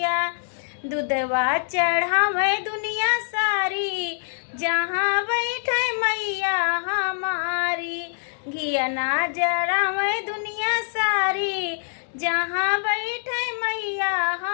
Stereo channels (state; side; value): silent; right; digital silence